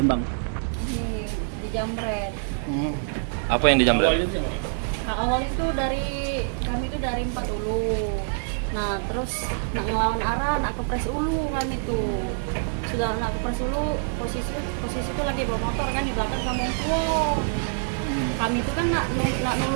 Dijamret. Apa yang dijamret? Awal itu kami itu dari 4 Ulu. Nah terus nak ngelawan arah, nak kepres Ulu kami tuh. Sudah nak kepres Ulu, posisi itu lagi bawa motor kan di belakang sama tua. Kami itu kan nak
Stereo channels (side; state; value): left; silent; digital silence